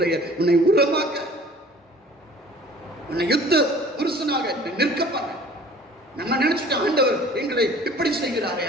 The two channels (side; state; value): both; normal; correlation 0.49